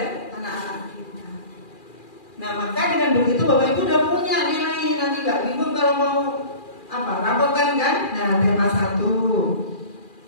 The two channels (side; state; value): right; late; 2.4 ms